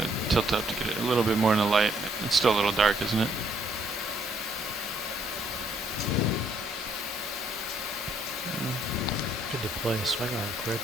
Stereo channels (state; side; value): normal; both; correlation 0.68